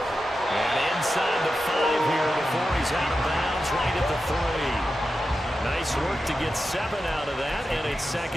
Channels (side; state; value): both; normal; correlation 0.91